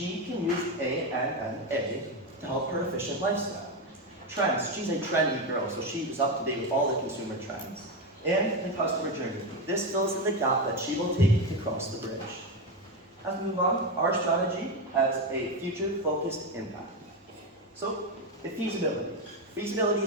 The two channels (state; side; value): normal; both; correlation 0.12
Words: can use ANNA to help her efficient lifestyle. Trends, she's a trendy girl, so she is up to date with all the consumer trends. And the customer journey, this fills in the gap that she will take to cross the bridge. As we move on, our strategy has a future-focused impact. So, the feasibility. Feasibility